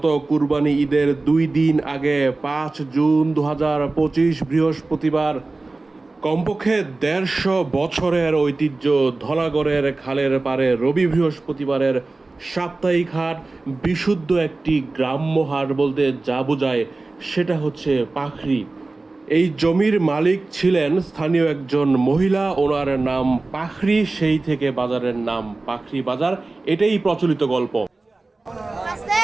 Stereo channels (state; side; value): quieter; left; 3.3 dB